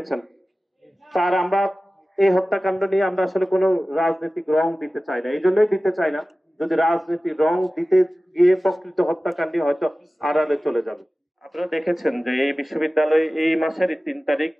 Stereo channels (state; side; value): normal; both; correlation 0.96